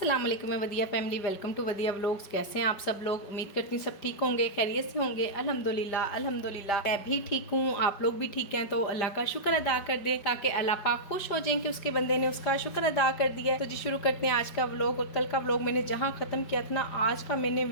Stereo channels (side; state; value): right; late; 5.0 ms